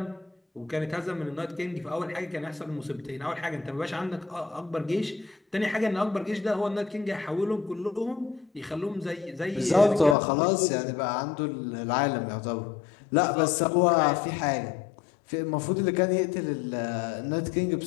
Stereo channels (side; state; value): right; drops out; at 10.2 s